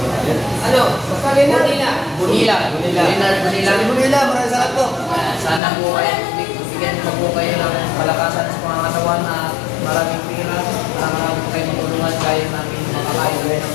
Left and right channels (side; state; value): right; drops out; at 5.6 s